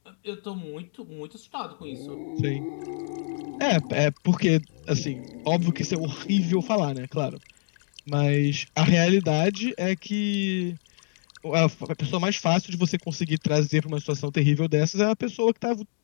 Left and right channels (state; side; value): silent; right; digital silence